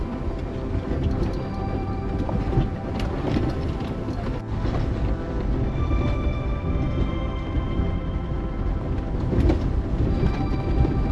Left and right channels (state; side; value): identical; both; correlation 1.00